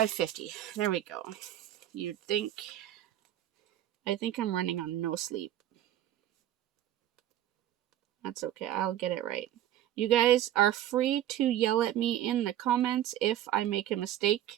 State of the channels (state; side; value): quieter; left; 12.5 dB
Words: 50. There we go. You'd think. I think I'm running on no sleep. That's okay. I'll get it right. You guys are free to yell at me in the comments if I make a mistake.